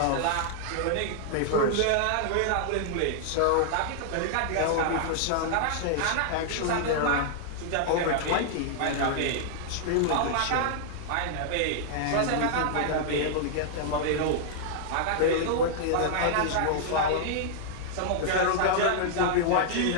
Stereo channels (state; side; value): different; both; correlation -0.01